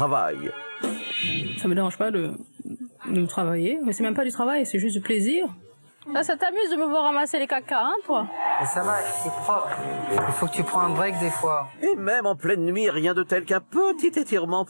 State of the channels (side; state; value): both; inverted; correlation -1.00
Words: Ça me dérange pas de travailler, mais c'est même pas du travail, c'est juste du plaisir. Là, ça t'amuse de me voir ramasser les caca, hein, toi? Mais ça va, c'est propre. Il faut que tu prends un break des fois. Et même en pleine nuit, rien de tel qu'un petit étirement